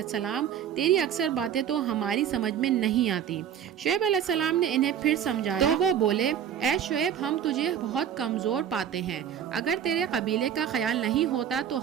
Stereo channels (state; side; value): quieter; left; 9.2 dB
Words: السلام تیری اکثر باتیں تو ہماری سمجھ میں نہیں آتی۔ شعیب علیہ السلام نے انہیں پھر سمجھایا تو وہ بولے اے شعیب ہم تجھے بہت کمزور پاتے ہیں، اگر تیرے قبیلے کا خیال نہیں ہوتا